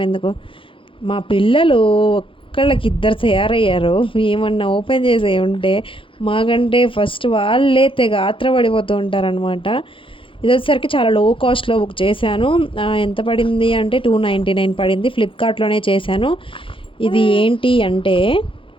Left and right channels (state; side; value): late; right; 0.25 ms